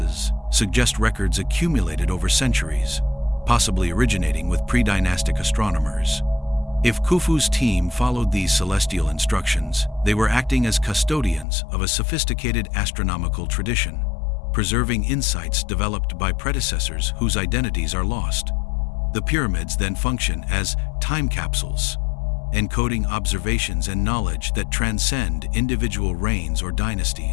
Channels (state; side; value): drops out; right; at 11.5 s